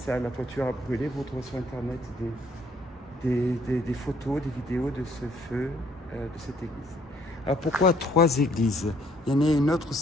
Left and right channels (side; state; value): both; normal; correlation 0.64